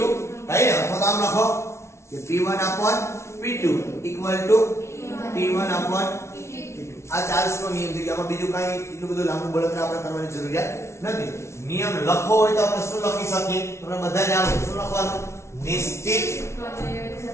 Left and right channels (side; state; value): right; late; 0.13 ms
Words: થાય ને. અથવા તો આમ લખો કે P1/P2 ઇક્વલ ટુ T1/T2. આ ચાર્લ્સ નો નિયમ છે કે આમાં બીજું કાંઈ એટલું બધું લાંબુ બળતરા આપણે કરવાની જરૂરિયાત નથી. નિયમ લખવો હોય તો આપણે શું લખી શકીએ તમને બધા જ આવડે. શું લખવાનું?